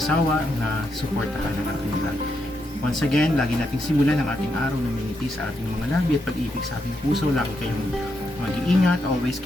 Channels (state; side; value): normal; both; correlation 0.81